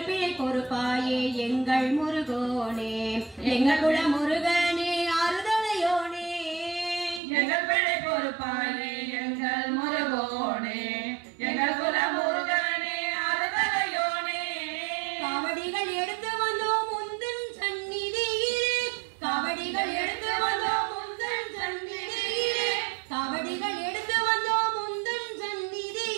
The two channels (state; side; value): drops out; left; at 7.2 s